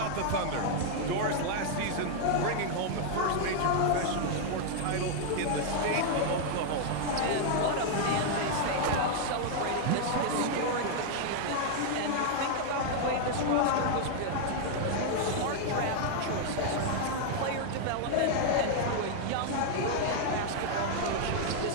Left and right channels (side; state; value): both; different; correlation 0.00